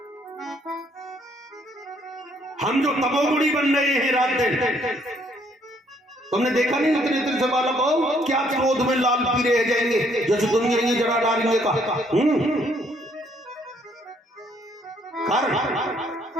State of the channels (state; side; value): normal; both; correlation 0.66